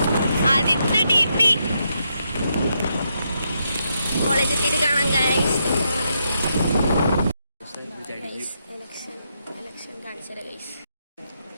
ആദിത്യ ടി പി കോളേജ് എത്തിയിട്ട് കാണാം ഗായ്സ്. എലക്ഷൻ കാണിച്ചത് ഗൈസ്.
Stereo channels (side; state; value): both; inverted; correlation -0.80